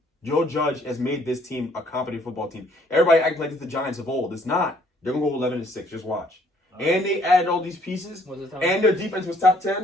Joe Judge has made this team a competent football team. Everybody acting like it's the Giants of old. It's not. They're gonna go 11-6. Just watch. And they added all these pieces, and their defense was top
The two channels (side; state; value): both; normal; correlation 0.63